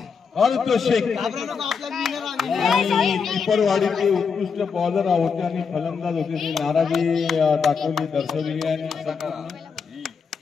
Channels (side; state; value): right; quieter; 5.8 dB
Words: अर्थ शेख आणि टिपरवाडीचे उत्कृष्ट बॉलर होते आणि फलंदाज होते. ते नाराजी दाखवली, दर्शवली आणि